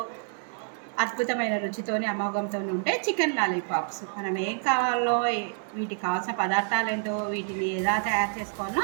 అద్భుతమైన రుచితోని అమోఘంతో ఉంటే చికెన్ లాలీపాప్స్. మనం ఏం కావాలో, వీటికి కావాల్సిన పదార్థాలు ఏంటో, వీటిని ఎలా తయారు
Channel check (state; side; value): silent; left; 59 dB below the other